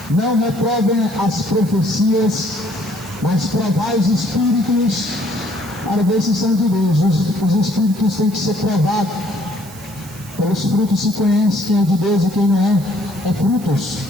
não reprovem as profecias, mas provai os espíritos para ver se são de Deus. Os espíritos têm que ser provados. Pelos frutos se conhece quem é de Deus e quem não é. É frutos,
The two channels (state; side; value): noise; right; hiss, 19 dB below the sound